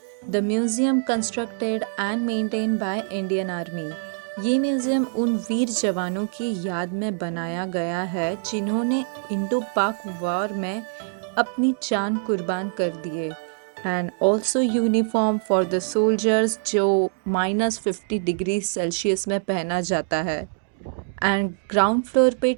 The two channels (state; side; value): silent; left; digital silence